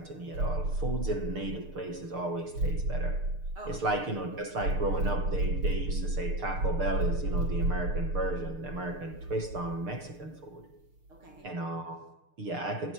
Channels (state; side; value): late; left; 6.6 ms